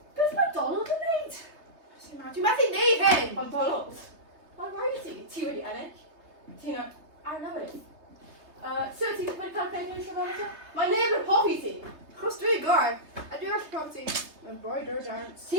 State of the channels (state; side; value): late; left; 3.3 ms